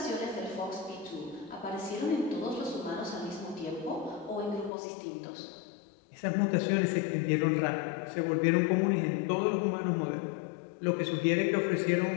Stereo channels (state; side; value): drops out; right; at 4.7 s